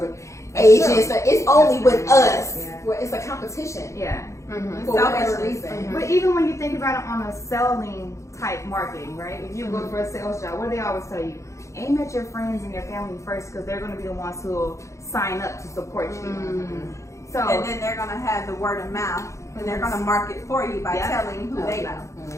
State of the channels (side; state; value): right; late; 0.15 ms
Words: Asians, so it's only with us where it's a competition. Yeah. Mm-hmm. For whatever Selfishness. reason. But even when you think about it on a selling type marketing, right? If you go for a sales job, what do they always tell you? Aim at your friends and your family first because they're going to be the ones who will sign up to support you. So, And then they're gonna have the word of mouth, and they're gonna market for you by telling who they know.